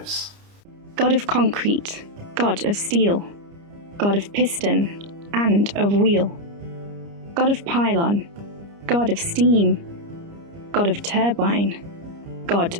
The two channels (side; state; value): left; late; 30 ms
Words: God of concrete, God of steel, God of piston and of wheel, God of pylon, God of steam, God of turbine, God